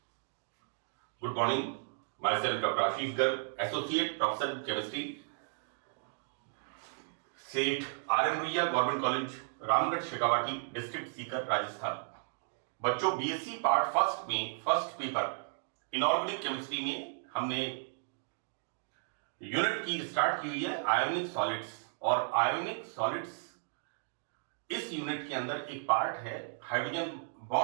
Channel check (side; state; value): left; silent; digital silence